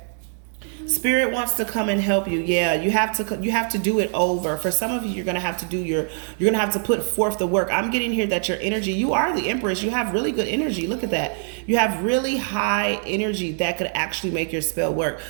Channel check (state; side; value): silent; left; 57 dB below the other